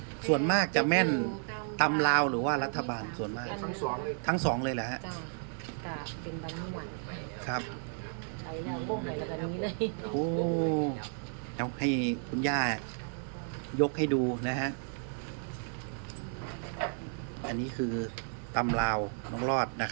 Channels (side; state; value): left; silent; 56 dB below the other